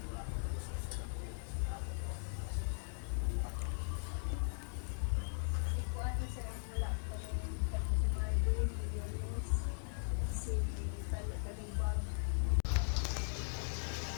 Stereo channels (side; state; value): right; silent; digital silence